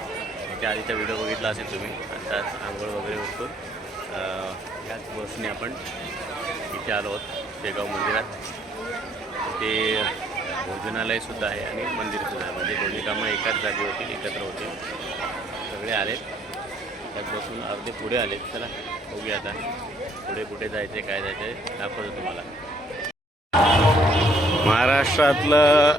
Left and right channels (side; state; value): both; normal; correlation 0.65